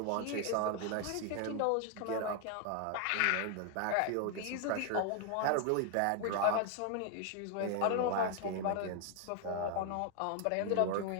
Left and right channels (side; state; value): both; different; correlation 0.00